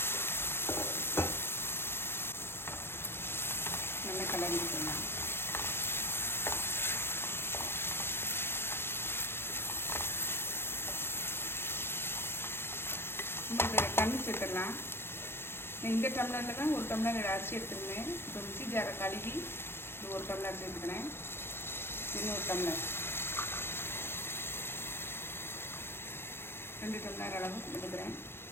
நல்லா கலரி விட்டுடலாம். இதில் தண்ணி சேர்த்துடலாம். இந்த டம்ளரில் தான் 1 டம்ளர் அரிசி எடுத்துருந்தேன். இப்போ மிக்ஸி ஜாரை கழுவி இது 1 டம்ளர் சேர்த்துக்கிறேன். இன்னும் 1 டம்ளர் 2 டம்ளர் அளவு எடுக்கிறேன்.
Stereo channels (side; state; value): right; late; 0.11 ms